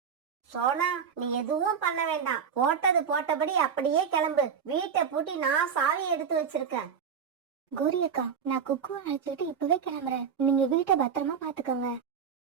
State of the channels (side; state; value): left; quieter; 7.0 dB